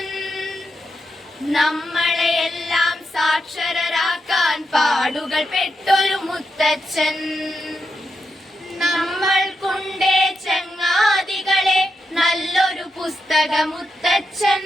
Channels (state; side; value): normal; both; correlation 0.85